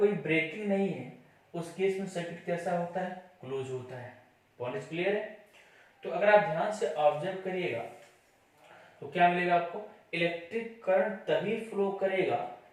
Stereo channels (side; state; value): both; identical; correlation 1.00